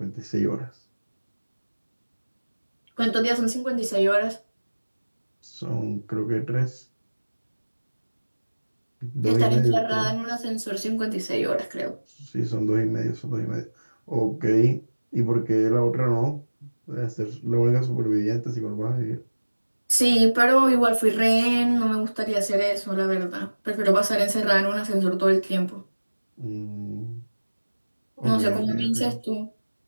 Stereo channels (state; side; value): inverted; both; correlation -1.00